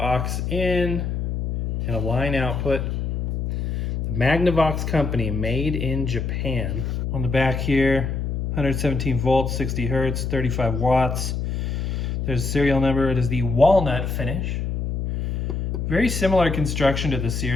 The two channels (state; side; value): noise; left; hum, 2 dB below the sound